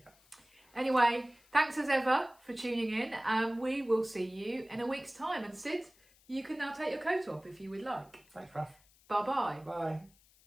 Anyway, thanks as ever for tuning in. We will see you in a week's time. And Sid, you can now take your coat off if you would like. Thanks, Raf. Bye-bye. Bye.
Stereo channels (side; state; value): left; noise; hiss, 30 dB below the sound